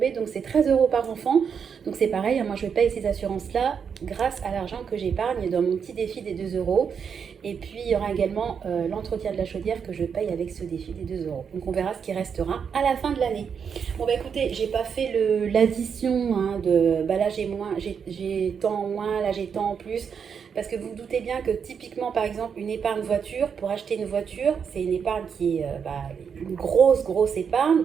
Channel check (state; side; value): quieter; left; 6.8 dB